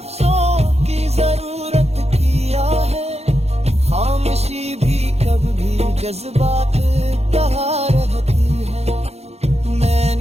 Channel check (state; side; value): late; left; 0.31 ms